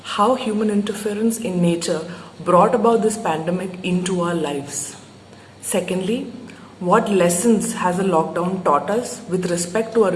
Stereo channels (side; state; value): both; identical; correlation 1.00